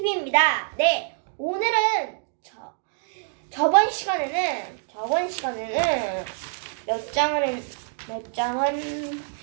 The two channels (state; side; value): silent; left; digital silence